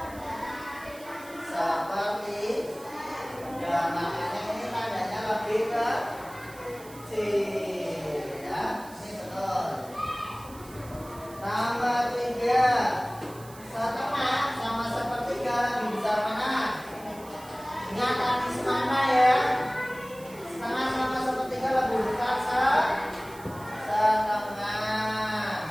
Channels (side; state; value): right; noise; hiss, 20 dB below the sound